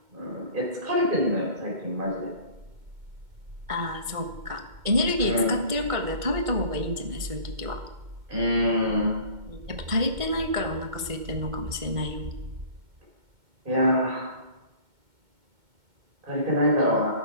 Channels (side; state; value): left; late; 2.2 ms